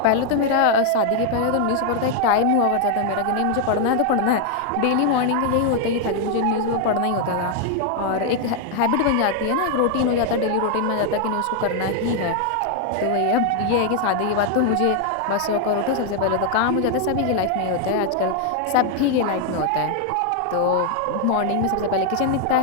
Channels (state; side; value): different; both; correlation 0.00